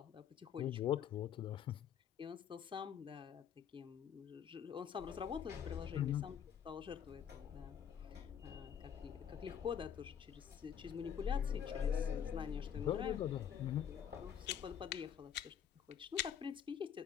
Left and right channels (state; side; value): quieter; right; 8.6 dB